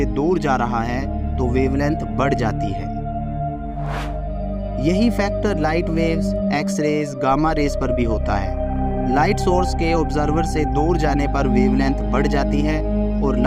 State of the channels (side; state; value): both; identical; correlation 1.00